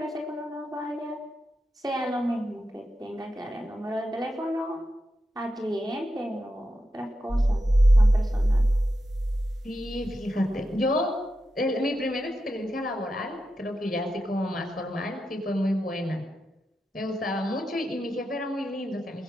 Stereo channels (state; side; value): normal; both; correlation 0.88